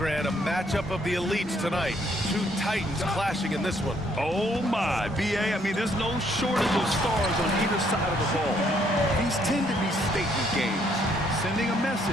a matchup of the elites tonight. Two titans clashing in this one. Oh, my. BA, I mean, there's no shortage of stars on either side of the ball. These tend to be statement games, sending a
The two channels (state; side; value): normal; both; correlation 0.68